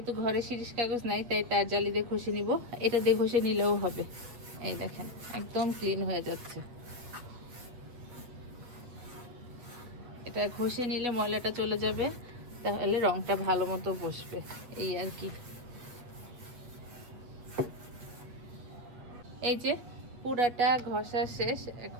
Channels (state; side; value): late; left; 8.4 ms